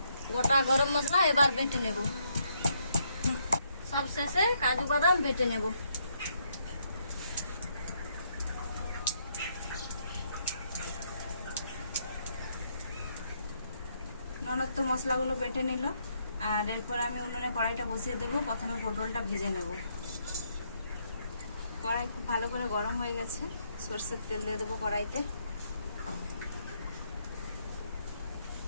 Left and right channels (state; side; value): inverted; both; correlation -0.73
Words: গোটা গরম মশলা এবার বেটে নেব। সব শেষে কাজু বাদাম বেটে নেব। ননদ তো মশলাগুলো বেটে নিল। আর এরপর আমি উনুনে কড়াইটা বসিয়ে দেবো। প্রথমে পটলটা ভেজে নেব। কড়াই খুব ভালো করে গরম হয়ে গেছে। সরষের তেল দিয়ে দেবো কড়াইতে।